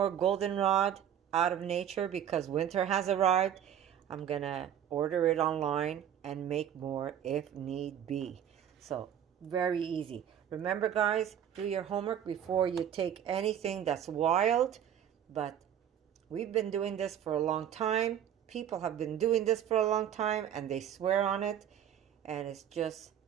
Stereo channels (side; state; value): left; quieter; 9.7 dB